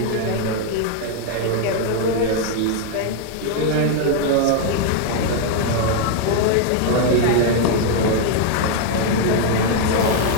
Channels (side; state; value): both; different; correlation 0.00